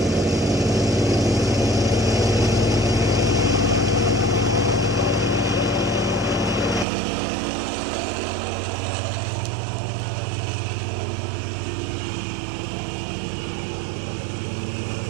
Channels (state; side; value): drops out; left; at 6.9 s